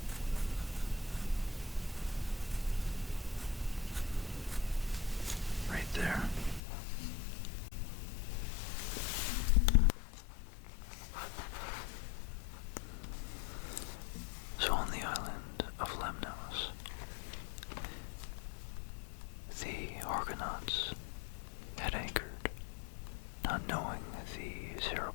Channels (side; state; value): right; drops out; at 6.6 s